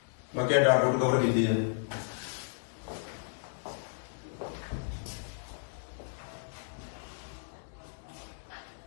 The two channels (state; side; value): silent; right; digital silence